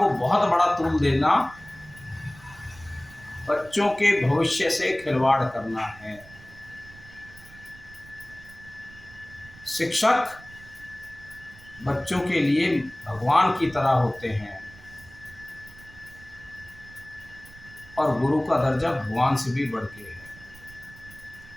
बहुत बड़ा तूल देना बच्चों के भविष्य से खिलवाड़ करना है। शिक्षक बच्चों के लिए भगवान की तरह होते हैं और गुरु का दर्जा भगवान से भी बढ़ के है।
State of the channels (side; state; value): right; noise; rumble, 21 dB below the sound